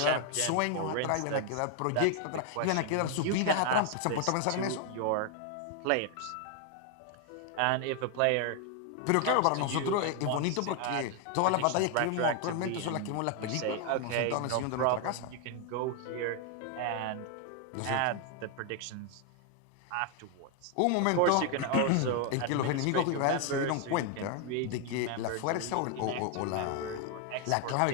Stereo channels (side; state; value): both; different; correlation 0.00